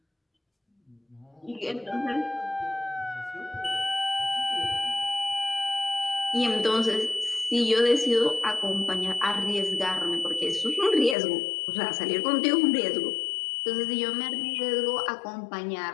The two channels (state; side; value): drops out; right; at 11.2 s